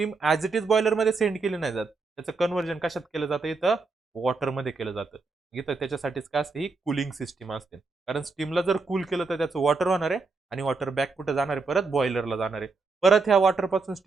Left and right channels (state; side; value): quieter; left; 4.1 dB